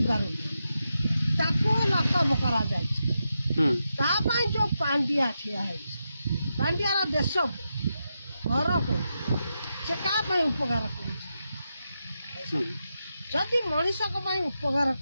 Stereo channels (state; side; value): inverted; both; correlation -0.87